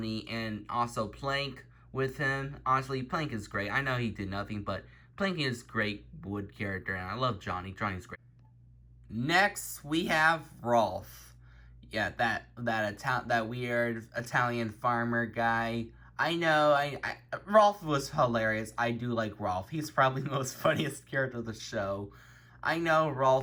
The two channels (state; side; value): identical; both; correlation 1.00